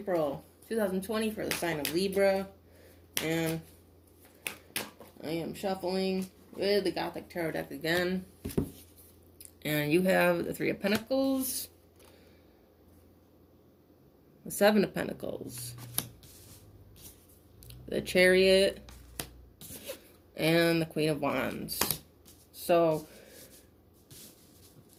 2020 for the sign of Libra. And I am shuffling with the Gothic Tarot deck again. And you have the Three of Pentacles, the Seven of Pentacles, the Chariot, and the Queen of Wands. So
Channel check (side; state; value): both; identical; correlation 1.00